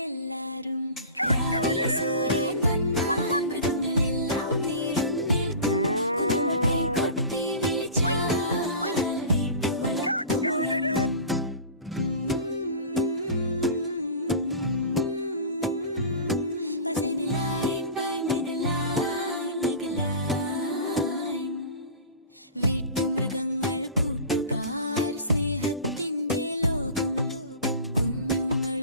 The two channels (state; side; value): inverted; both; correlation -0.36